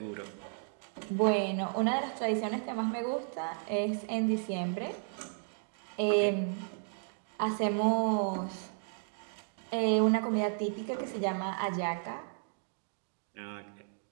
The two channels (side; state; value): left; silent; 55 dB below the other